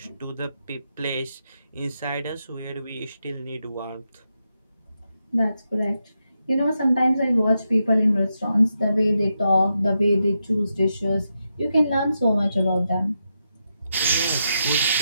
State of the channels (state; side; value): inverted; both; correlation -0.85